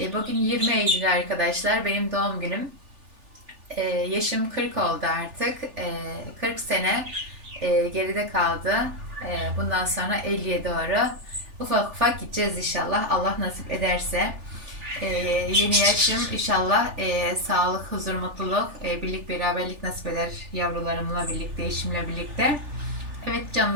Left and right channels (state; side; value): late; left; 3.4 ms